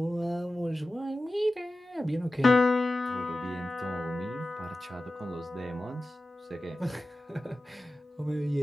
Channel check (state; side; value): normal; both; correlation 0.95